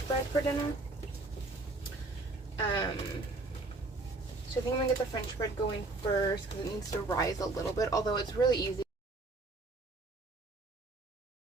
bread for dinner. So I think I'm gonna get the French bread going first because it needs to rise a little bit, although it's really easy.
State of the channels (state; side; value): quieter; left; 3.2 dB